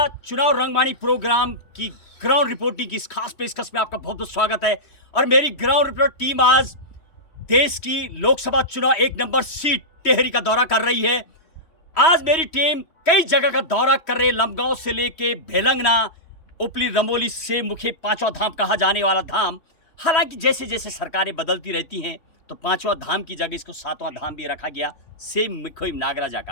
चुनाव रंगमाणी प्रोग्राम की ground reporting की इस खास पेशकश में आपका बहुत बहुत स्वागत है। और मेरी ग्राउंड रिपोर्ट टीम आज देश की लोकसभा चुनाव 1 नंबर सीट टेहरी का दौरा कर रही है। आज मेरी टीम कई जगह का दौरा कर रही है, लमगांव से लेके भेलंगना, उपली, रमोली से मुखी पांचवा धाम कहा जाने वाला धाम। हालांकि जैसे जैसे सरकारें बदलती रहती हैं तो पांचवा धाम की जगह इसको सातवां धाम भी रखा गया, सेम मुखोई नागराजा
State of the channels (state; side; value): late; right; 3.1 ms